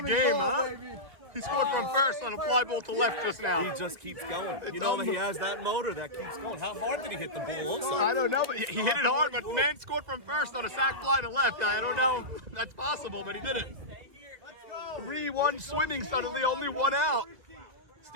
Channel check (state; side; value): late; left; 1.7 ms